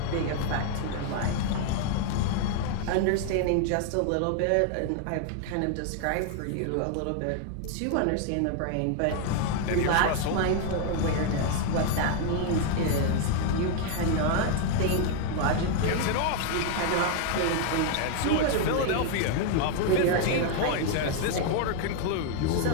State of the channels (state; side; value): different; both; correlation 0.00